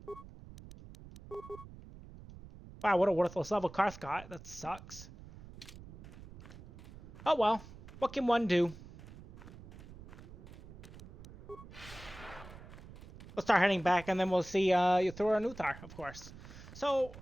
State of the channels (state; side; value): noise; right; rumble, 16 dB below the sound